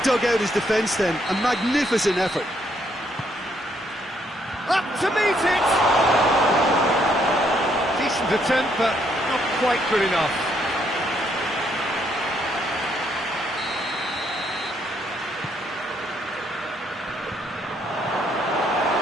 dug out his defence then, a magnificent effort. Up to meet it! Decent attempt, but not quite good enough.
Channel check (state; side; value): normal; both; correlation 0.72